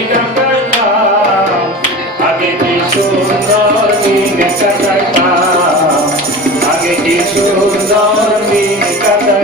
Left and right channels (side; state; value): both; normal; correlation 0.33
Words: কাটাইতাম আগে কি সুন্দর দিন কাটাইতাম আগে কি সুন্দর দিন